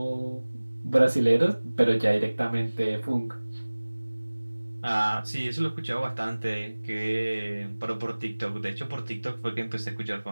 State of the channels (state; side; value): inverted; both; correlation -1.00